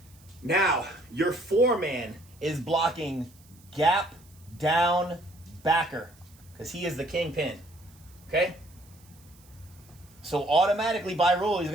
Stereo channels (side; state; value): right; noise; hiss, 27 dB below the sound